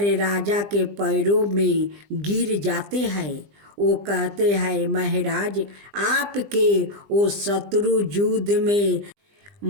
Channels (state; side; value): late; left; 20 ms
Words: राजा के पैरों में गिर जाते हैं। वो कहते हैं, महाराज आपके वो शत्रु युद्ध में